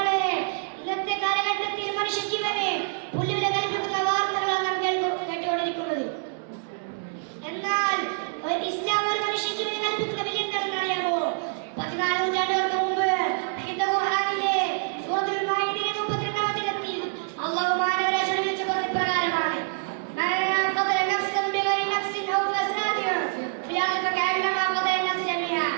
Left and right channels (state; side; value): silent; left; digital silence